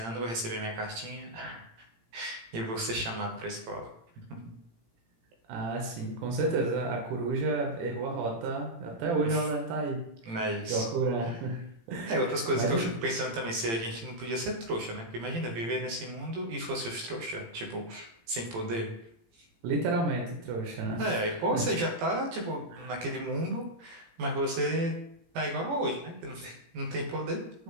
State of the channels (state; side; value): late; left; 18 ms